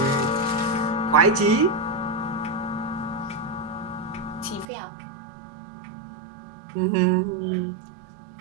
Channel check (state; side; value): drops out; left; at 4.7 s